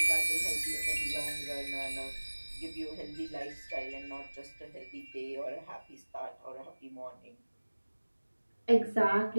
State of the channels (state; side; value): inverted; both; correlation -1.00